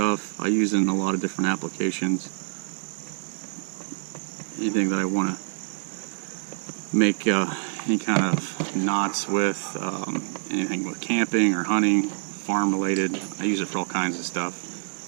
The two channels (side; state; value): left; silent; digital silence